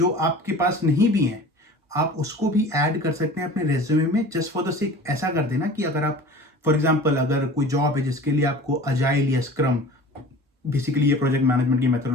आपके पास नहीं भी हैं, आप उसको भी ऐड कर सकते हैं अपने रेज्यूमे में, जस्ट फॉर द सेक। ऐसा कर देना कि अगर आप फॉर एग्जांपल अगर कोई जॉब है जिसके लिए आपको अजाइल या स्क्रम, बेसिकली ये प्रोजेक्ट मैनेजमेंट की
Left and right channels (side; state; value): both; normal; correlation 0.40